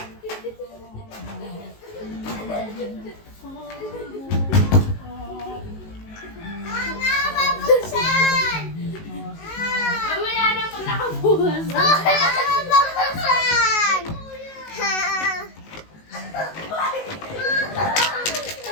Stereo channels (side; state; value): right; late; 19 ms